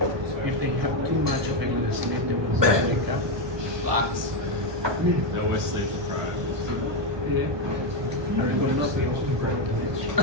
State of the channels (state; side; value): late; left; 1.2 ms